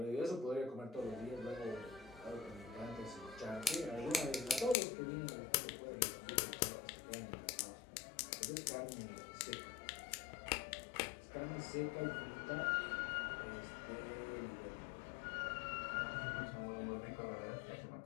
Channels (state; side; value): drops out; right; at 4.8 s